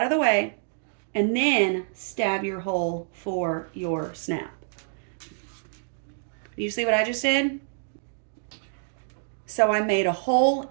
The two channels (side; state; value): left; silent; digital silence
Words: of the way, and then stab your hole for your snap. You see what I just did? So I made a hole